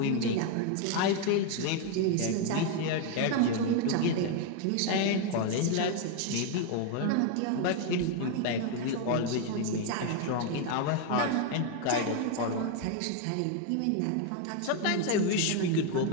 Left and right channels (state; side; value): different; both; correlation 0.01